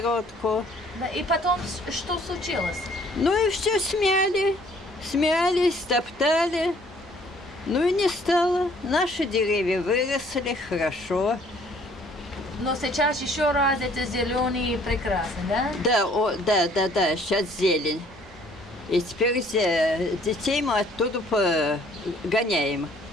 Да. И потом что случилось? Ну и все смяли. Смяли, стоптали. Ну и не стало. Наши деревья выросли хорошо. Но сейчас еще раз это зеленый и прекрасный, да? Да, да, сейчас зелень. И теперь детей мы оттуда гоняем,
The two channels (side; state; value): both; normal; correlation 0.59